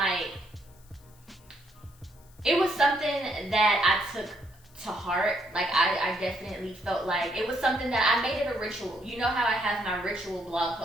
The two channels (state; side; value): noise; left; hiss, 28 dB below the sound